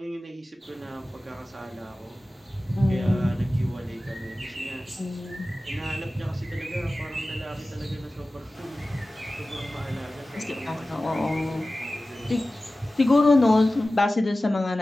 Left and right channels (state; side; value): normal; both; correlation 0.96